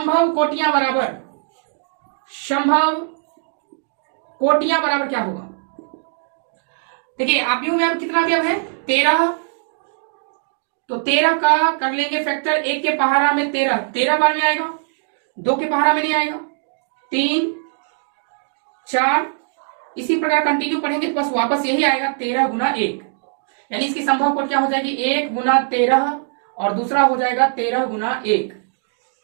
कोटियां बराबर, संभव कोटियां बराबर क्या होगा? देखिए आव्यूह में अब कितना अवयव है? 13, तो 13 का कर लेंगे फैक्टर, 1 के पहाड़ा में 13 बार में आएगा, 2 के पहाड़ा में नहीं आएगा, 3 4, इसी प्रकार कंटिन्यू पढ़ेंगे तो बस वापस यही आएगा 13 गुना 1, यानी इसकी संभव कोट क्या हो जाएगी? 1 गुना 13 और दूसरा हो जाएगा 13 गुना 1।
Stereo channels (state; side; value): silent; left; digital silence